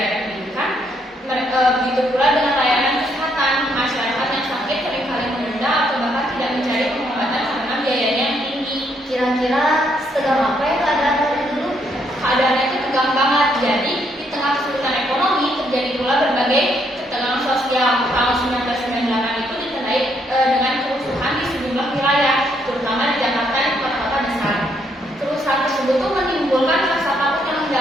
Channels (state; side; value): normal; both; correlation 0.73